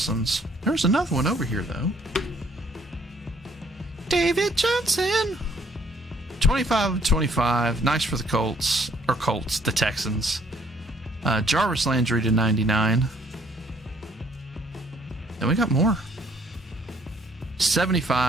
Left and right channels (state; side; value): normal; both; correlation 0.63